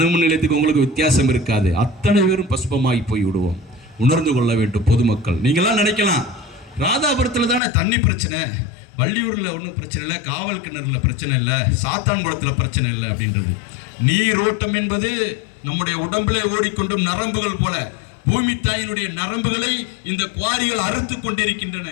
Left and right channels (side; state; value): right; drops out; at 7.6 s